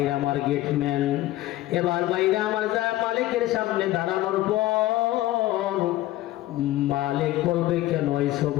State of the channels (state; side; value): quieter; right; 15.9 dB